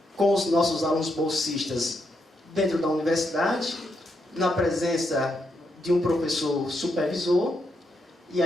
com os nossos alunos bolsistas dentro da universidade, na presença de um professor supervisor, e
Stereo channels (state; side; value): normal; both; correlation 0.80